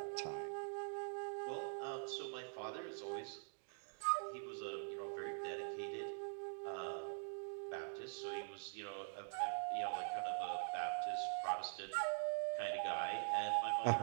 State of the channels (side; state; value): left; silent; digital silence